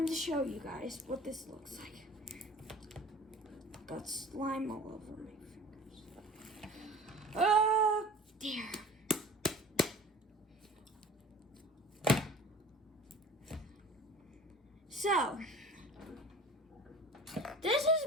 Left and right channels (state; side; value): normal; both; correlation 0.43